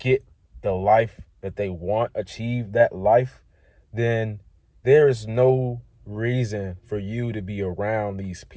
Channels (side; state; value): both; identical; correlation 1.00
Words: the life that they want, achieve that life, then there is no reason for you to be around these